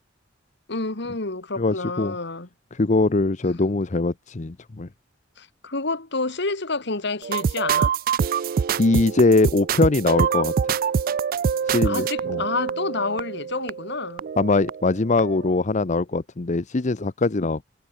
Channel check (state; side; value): normal; both; correlation 0.26